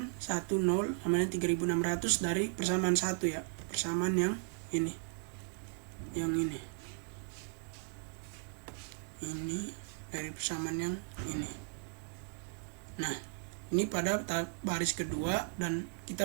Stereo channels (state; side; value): silent; left; 54 dB below the other